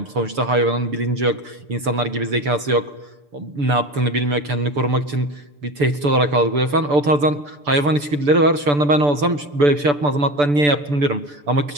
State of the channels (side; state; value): left; late; 6.9 ms